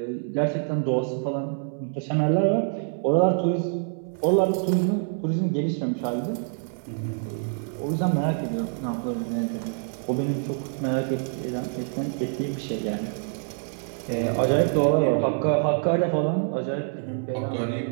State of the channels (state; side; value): silent; left; 61 dB below the other